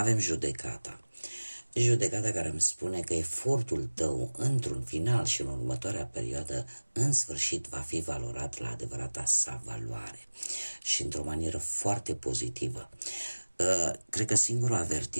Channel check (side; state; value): both; inverted; correlation -1.00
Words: judecata. Judecata care îmi spune că efortul tău într-un final și în următoarea perioadă în sfârșit va fi valorat la adevărata sa valoare și într-o manieră foarte pozitivă. Cred că singurul